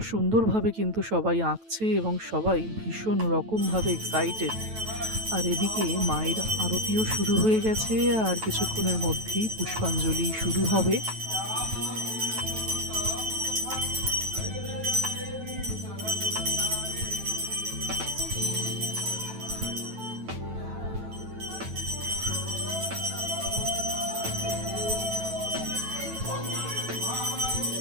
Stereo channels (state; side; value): late; left; 9.1 ms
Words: সুন্দরভাবে কিন্তু সবাই আঁকছে এবং সবাই ভীষণ রকমভাবে এক্সাইটেড। আর এদিকে মায়ের আরতিও শুরু হয়ে গেছে, আর কিছুক্ষণের মধ্যেই পুষ্পাঞ্জলি শুরু হবে।